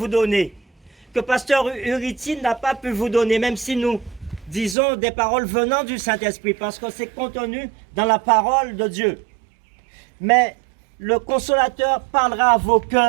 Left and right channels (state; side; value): drops out; left; at 4.8 s